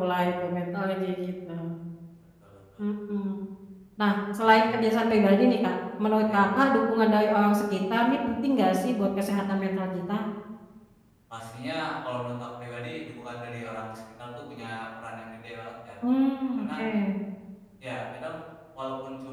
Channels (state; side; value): identical; both; correlation 1.00